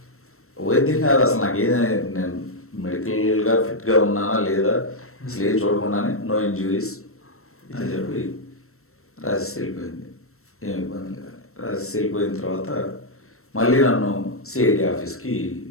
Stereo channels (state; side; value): late; right; 0.63 ms